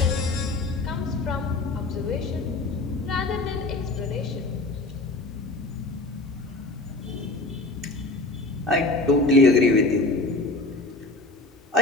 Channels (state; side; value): quieter; right; 3.0 dB